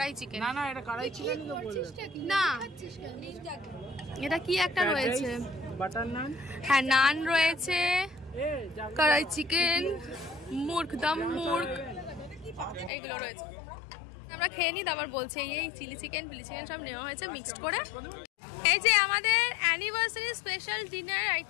চিকেন। না না এটা কড়াই চিকেন না এটা কি একটা রয়েছে, বাটার নান। হ্যাঁ নান রয়েছে, কড়াই চিকেন, মুর্গ দম মুর্গ, এইগুলো রয়েছে। আমরা খেয়ে নিই তারপর বলছি। এই চিলি চিকেন সব নেওয়া হয়েছে মিক্সড করে। এই যে আমাদের অ্যানিভার্সারি স্পেশাল ডিনার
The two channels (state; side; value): drops out; right; at 12.9 s